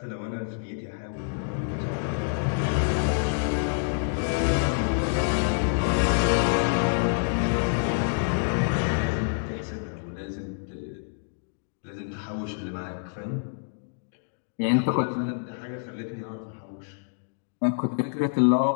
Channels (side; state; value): right; silent; digital silence